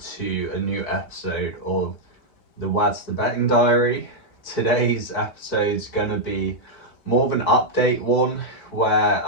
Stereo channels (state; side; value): late; right; 4.6 ms